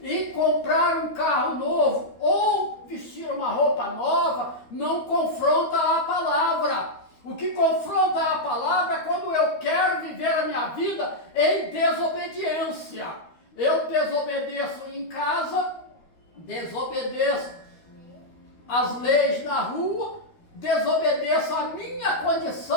E comprar um carro novo ou vestir uma roupa nova não confronta a palavra. O que confronta a palavra é quando eu quero viver a minha vida em desobediência. Eu desobedeço em casa, desobedeço as leis na rua, desobedeço a minha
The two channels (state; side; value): late; right; 13 ms